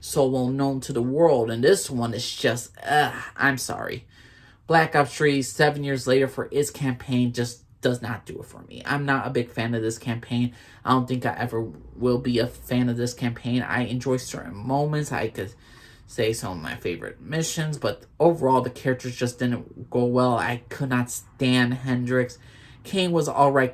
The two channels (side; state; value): both; identical; correlation 1.00